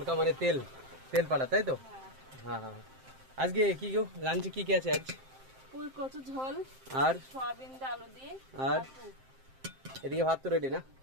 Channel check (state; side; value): late; left; 7.6 ms